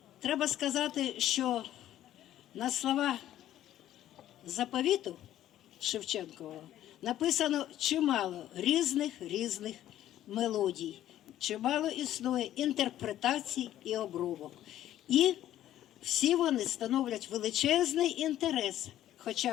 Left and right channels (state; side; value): quieter; right; 12.6 dB